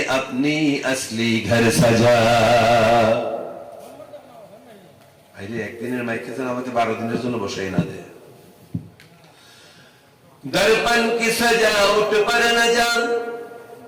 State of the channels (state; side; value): identical; both; correlation 1.00